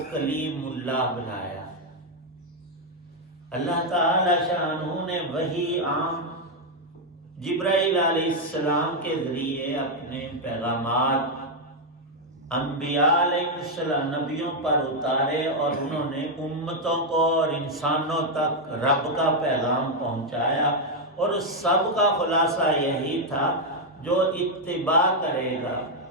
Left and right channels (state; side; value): normal; both; correlation 0.01